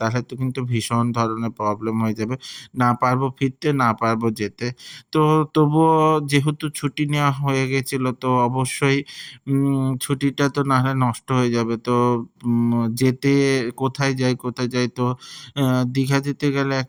তো কিন্তু ভীষণ ধরনের প্রবলেম হয়ে যাবে। না পারবো ফিরতে, না পারবো যেতে। তো তবুও যেহেতু ছুটি নেওয়া হয়ে গেছিল, তো অবশ্যই ছুটিটা তো না হয় নষ্ট হয়ে যাবে। তো যেতে কোথায় যাই, তো আ দীঘা যেতে গেলে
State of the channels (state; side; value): identical; both; correlation 1.00